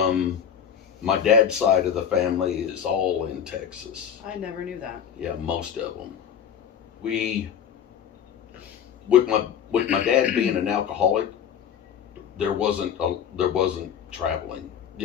my dad's side of the family is all in Texas. I never knew that. Yeah, most of them. With my dad being an alcoholic, there wasn't traveling.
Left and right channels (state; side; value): quieter; right; 8.4 dB